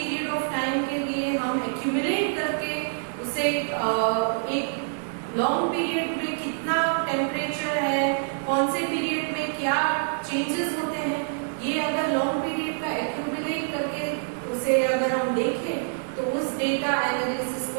of time के लिए हम accumulate करके उसे एक long period में कितना temperature है, कौन से period में क्या changes होते हैं, ये अगर long period का accumulate करके उसे अगर हम देखें तो उस data analysis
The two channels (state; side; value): silent; left; digital silence